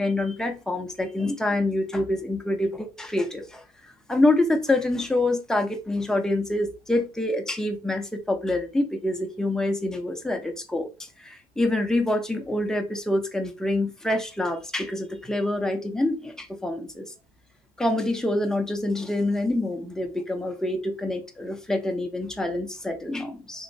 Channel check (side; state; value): both; normal; correlation 0.85